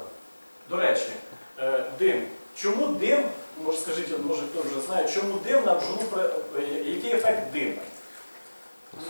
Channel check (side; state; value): both; inverted; correlation -1.00